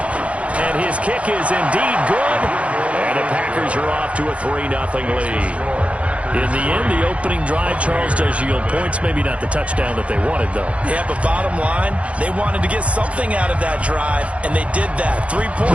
And his kick is indeed good. And the Packers are off to a 3-0 lead. In the end, the opening drive, Charles, does yield points. Maybe not the touchdown that they wanted, though. Yeah, but bottom line, they wanted to get something out of that drive, and they did that. 3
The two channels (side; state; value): left; late; 0.063 ms